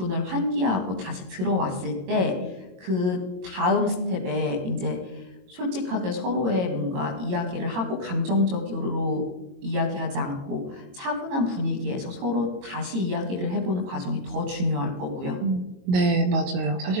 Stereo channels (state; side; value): late; left; 22 ms